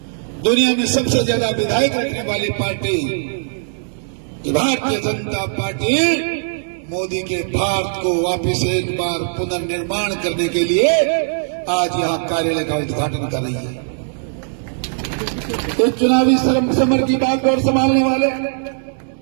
दुनिया में सबसे ज्यादा विधायक रखने वाली पार्टी भारतीय जनता पार्टी मोदी के भारत को वापस एक बार पुनर्निर्माण करने के लिए आज यहां कार्यालय का उद्घाटन कर रही है। इस चुनावी समर की बागडोर संभालने वाले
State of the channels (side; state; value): left; silent; digital silence